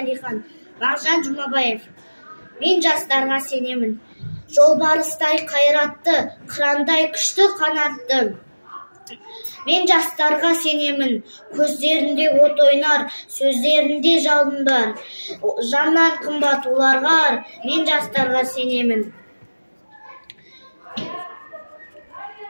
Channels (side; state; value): both; inverted; correlation -1.00